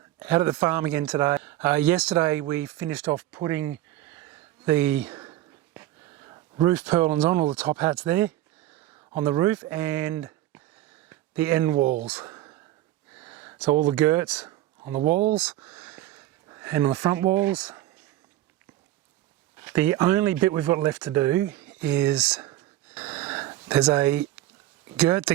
Out at the farm again today. Yesterday we finished off putting the roof purlins on, all the top hats there on the roof, and the end walls. So all the girts on the walls and on the front walls. The only bit we've got left to do is there's a girt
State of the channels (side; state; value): left; quieter; 14.5 dB